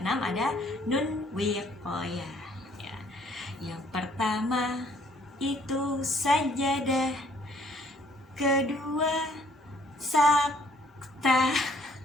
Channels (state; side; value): normal; both; correlation 0.62